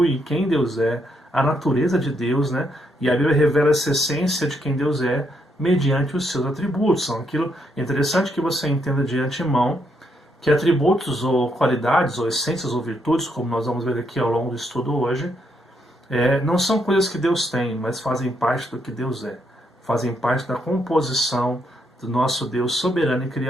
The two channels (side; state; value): both; normal; correlation 0.76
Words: quem Deus é, a natureza de Deus, né? E a Bíblia revela essa essência de quem Deus é mediante os seus atributos. São aquilo interessante que você entenda de antemão, que atributos ou qualidades ou essências ou virtudes, como nós vamos ver aqui ao longo do estudo hoje, não são coisas que Deus tem, mas fazem parte do que Deus é. Fazem parte da composição do nosso Deus soberano e